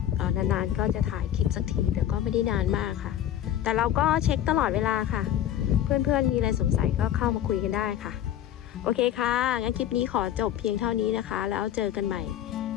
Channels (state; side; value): quieter; right; 11.2 dB